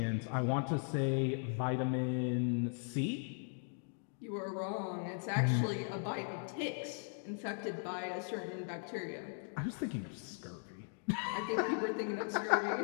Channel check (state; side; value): silent; right; 52 dB below the other